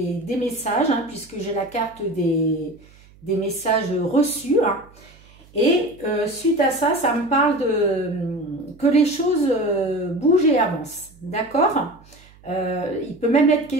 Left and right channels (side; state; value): right; noise; hum, 26 dB below the sound